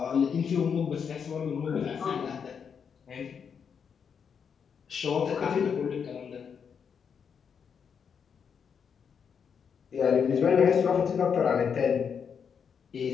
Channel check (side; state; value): right; quieter; 6.9 dB